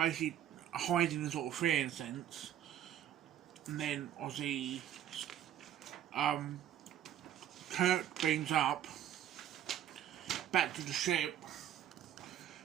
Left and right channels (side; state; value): left; quieter; 10.8 dB